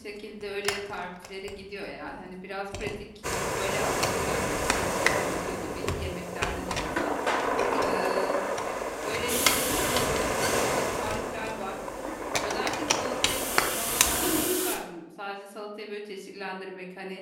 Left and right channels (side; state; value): both; identical; correlation 1.00